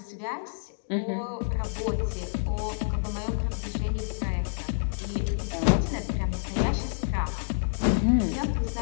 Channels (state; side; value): silent; right; digital silence